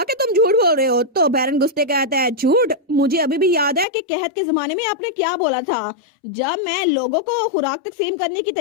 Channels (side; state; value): right; drops out; at 3.9 s